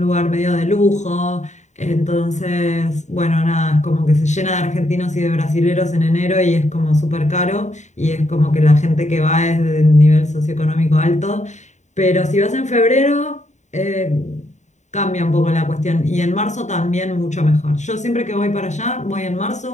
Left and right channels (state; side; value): late; right; 0.34 ms